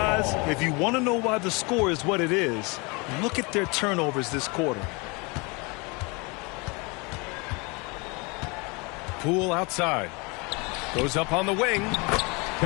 if you want to know why the score is what it is, look at their turnovers this quarter. Poole outside. Goes up on the wing.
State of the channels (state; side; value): quieter; right; 28.6 dB